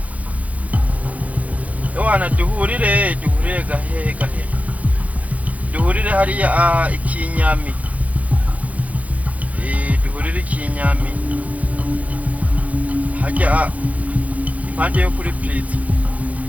Ewana duhurire gahe. Duhurire hariya ikinyami. Duhurire ikinyami. Hajya impande yo kuri Pritz.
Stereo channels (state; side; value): late; left; 0.070 ms